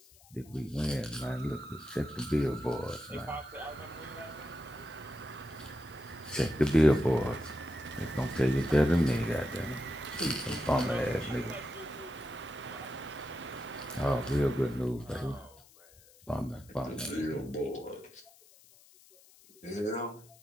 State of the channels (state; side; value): noise; left; hiss, 25 dB below the sound